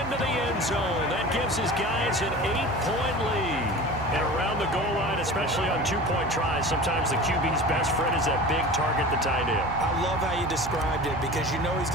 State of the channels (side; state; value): right; noise; hum, 11 dB below the sound